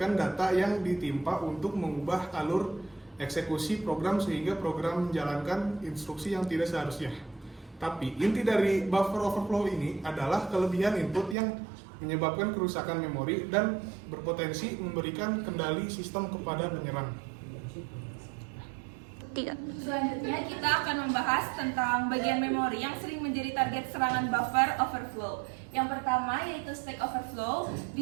data yang ditimpa untuk mengubah alur eksekusi program sehingga program menjalankan instruksi yang tidak seharusnya. Tapi inti dari buffer overflow ini adalah kelebihan input yang menyebabkan kerusakan memori dan berpotensi memberikan kendali sistem kepada penyerang. Selanjutnya kita akan membahas tentang bagian memori yang sering menjadi target serangan buffer overflow. Yang pertama yaitu stack overflow. Di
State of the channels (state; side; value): drops out; left; at 11.4 s